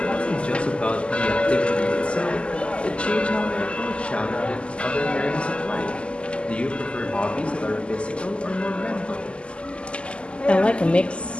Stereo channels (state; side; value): late; right; 0.053 ms